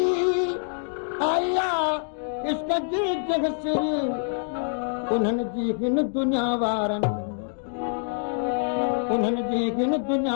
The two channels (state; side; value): silent; right; 59 dB below the other